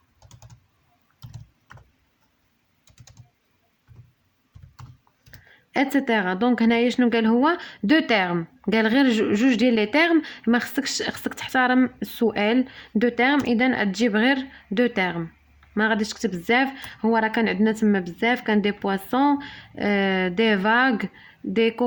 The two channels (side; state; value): both; identical; correlation 1.00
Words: اتسيتيرا. دونك هنايا شنو قال؟ هو دو تيرم. قال غير جوج ديال لي تيرم. ما خصك تحترم السؤال. دو تيرم اذا تجيب غير دو تيرم، ما غاديش تكتب بزاف. هو راه كان عندنا تما بزاف، كان دي بواسون دي فاغ دي